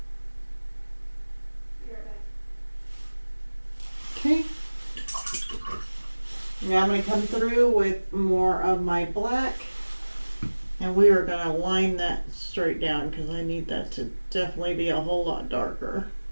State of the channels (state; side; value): inverted; both; correlation -1.00